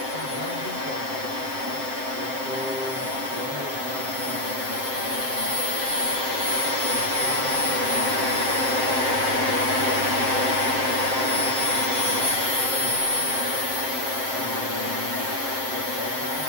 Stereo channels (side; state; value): left; late; 7.6 ms